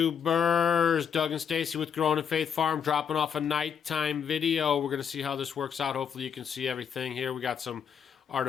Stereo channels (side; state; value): right; quieter; 7.6 dB